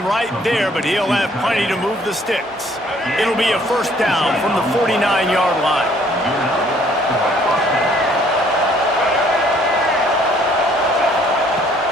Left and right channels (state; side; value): normal; both; correlation 0.61